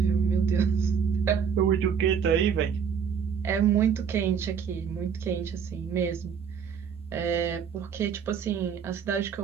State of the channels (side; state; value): left; quieter; 7.1 dB